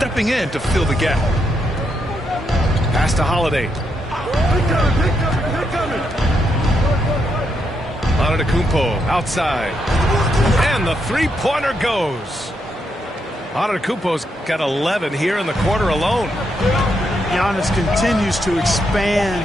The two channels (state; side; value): normal; both; correlation 0.80